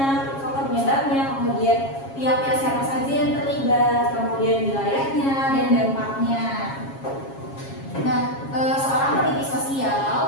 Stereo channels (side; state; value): right; late; 7.3 ms